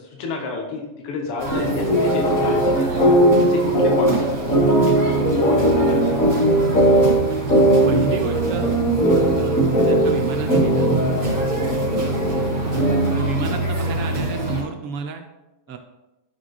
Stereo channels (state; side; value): late; right; 7.2 ms